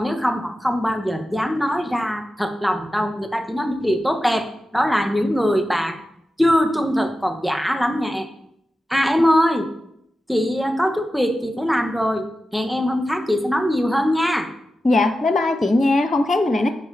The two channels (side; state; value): both; normal; correlation 0.92